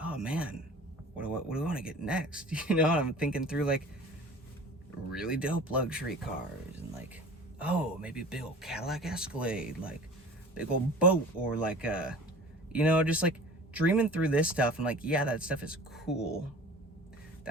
oh man, what do I want to get next? You know, I'm thinking through like really dope luxury cars and like, oh, maybe a big old Cadillac Escalade, like big old boat, or like you know, just like dreaming through this stuff. And like, yeah, that stuff is cool.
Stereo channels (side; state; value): both; normal; correlation 0.42